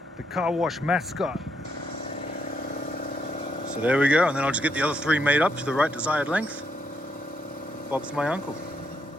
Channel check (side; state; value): both; normal; correlation 0.76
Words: The car wash mascot. So there we go, and then I'll just get the other 3 made up to the right desired length. Bob's my uncle.